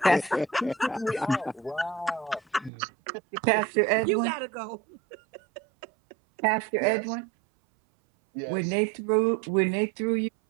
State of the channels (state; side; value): drops out; left; at 2.7 s